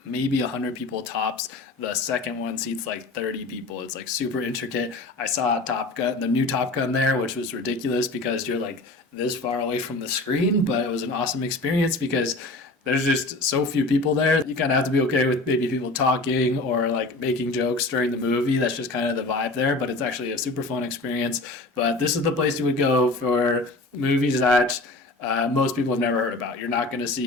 maybe 100 people tops. The second one seats like 30 people. It's like super intricate. I saw Top Gun, the new Top Gun there, which was ridiculous because you're like this far away from the screen, but it was an awesome experience because there's just so few people there. You kind of have to be okay with maybe people talking or like making jokes during the movie. That's just kind of the vibe there, but it's actually a super fun experience. But this is the place you would go for movies that most people have never heard about. You're not going to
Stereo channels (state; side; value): quieter; right; 3.0 dB